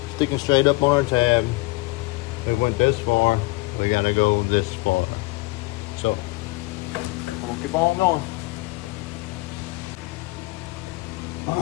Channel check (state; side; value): quieter; right; 22.6 dB